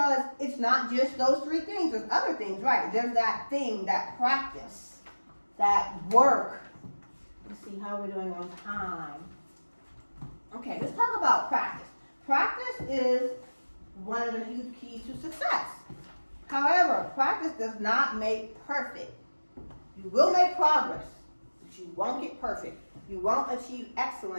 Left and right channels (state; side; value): inverted; both; correlation -1.00